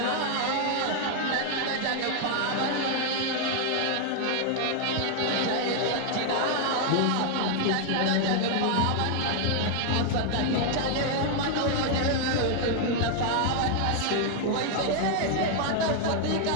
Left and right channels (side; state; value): both; different; correlation 0.00